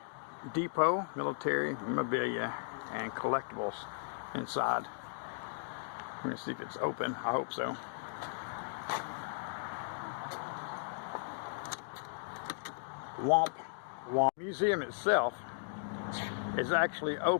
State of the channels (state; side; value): silent; right; digital silence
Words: Depot, military memorabilia and collectibles inside. Let me see if it's open. I hope so. Womp Womp. The museum itself is actually